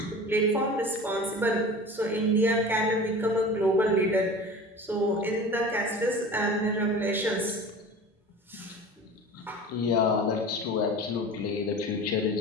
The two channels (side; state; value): both; normal; correlation 0.37